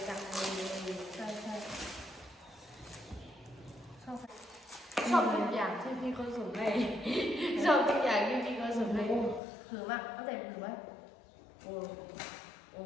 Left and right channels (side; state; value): right; drops out; at 9.4 s